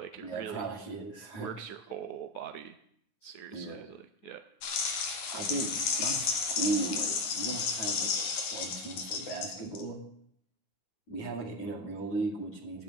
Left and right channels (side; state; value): right; late; 9.7 ms